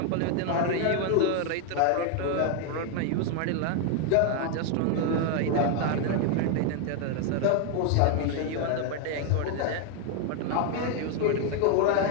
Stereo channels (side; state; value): both; different; correlation 0.01